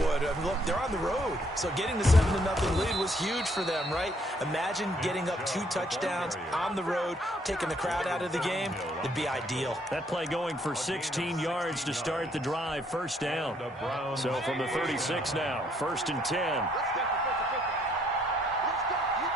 I mean, look, they're on the road. So getting the 7-0 lead was huge for them, right? Imagine getting up 2 touchdowns on the road, taking the crowd out of the game. It'd be ideal. That play going for 16 yards to start the drive, first down. So from the 36 now, 1st and 10.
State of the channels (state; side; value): normal; both; correlation 0.68